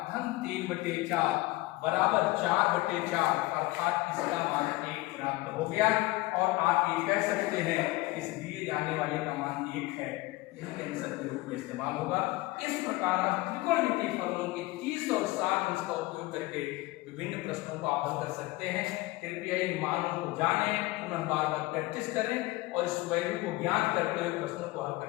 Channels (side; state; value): right; quieter; 20.2 dB